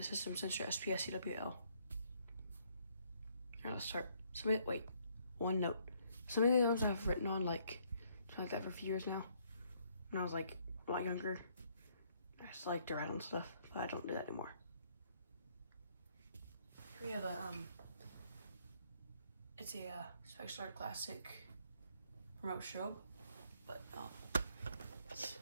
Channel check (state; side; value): inverted; both; correlation -0.68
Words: System Sensor SPS CWL. Alright, let's start. One note. Some of the alarms I've written on like that for a few years now. When I was like a lot younger, I just like to write on stuff, but I don't do that anymore. Here we have it's a Spexstar Classic remote strobe, but it's